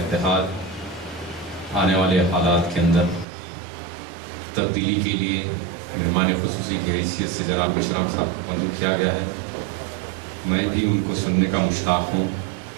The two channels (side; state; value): left; drops out; at 3.2 s